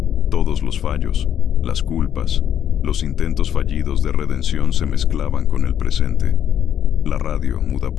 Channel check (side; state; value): right; quieter; 9.6 dB